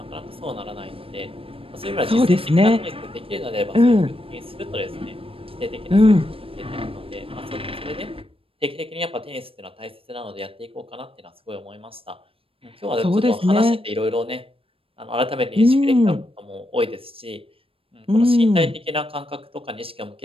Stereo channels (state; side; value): late; left; 0.27 ms